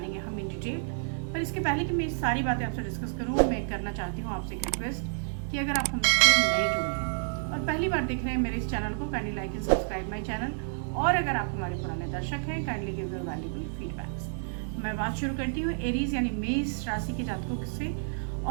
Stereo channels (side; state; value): left; silent; digital silence